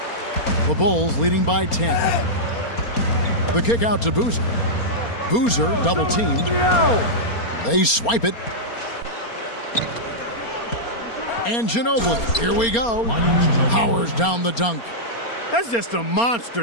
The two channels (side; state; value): right; late; 4.3 ms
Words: The Bulls leading by 10. The kick out to Boozer. Boozer double teamed. They swipe it. And Ginobili. Here we go. Powers down the dunk. That's just a